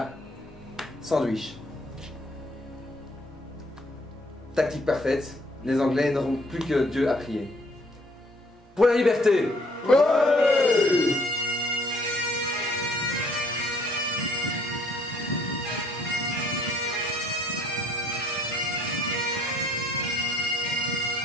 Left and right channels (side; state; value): both; normal; correlation 0.63